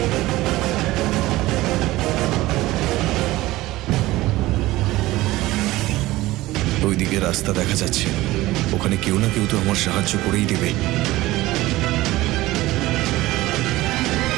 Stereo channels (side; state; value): left; quieter; 17.9 dB